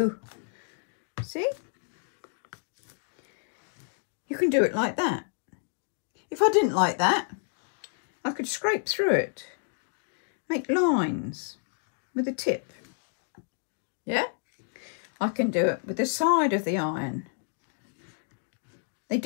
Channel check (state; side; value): silent; right; 58 dB below the other